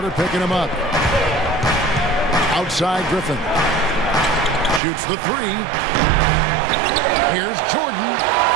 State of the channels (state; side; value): drops out; left; at 4.8 s